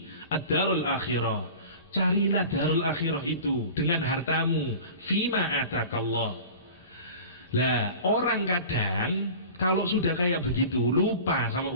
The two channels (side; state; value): both; inverted; correlation -0.38